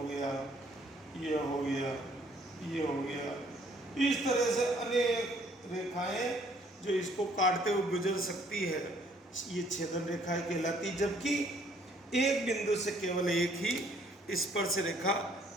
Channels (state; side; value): normal; both; correlation 0.63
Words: गया, ये हो गया, ये हो गया, इस तरह से अनेक रेखाएं जो इसको काटते हुए गुजर सकती है, ये छेदन रेखाएं कहलाती। जबकि एक बिंदु से केवल एक ही स्पर्श रेखा